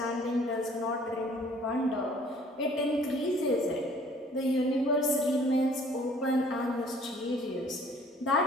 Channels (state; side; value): normal; both; correlation 0.55